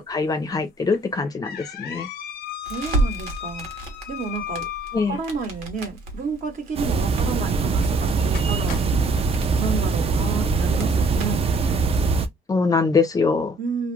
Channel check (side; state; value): both; normal; correlation 0.60